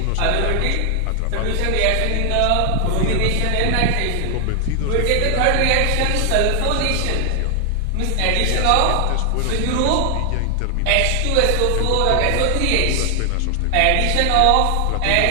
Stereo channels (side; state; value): both; different; correlation 0.00